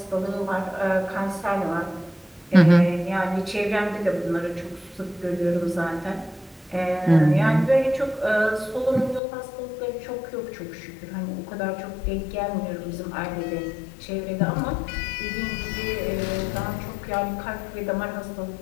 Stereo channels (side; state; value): right; drops out; at 9.2 s